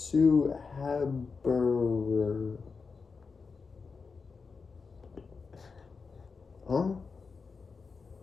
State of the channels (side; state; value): right; quieter; 4.9 dB